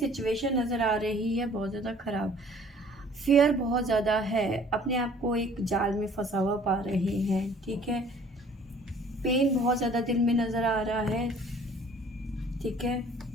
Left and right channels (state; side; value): normal; both; correlation 0.53